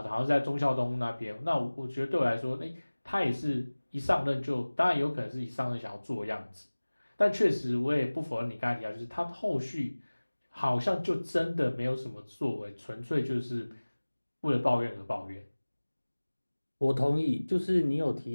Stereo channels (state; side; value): inverted; both; correlation -1.00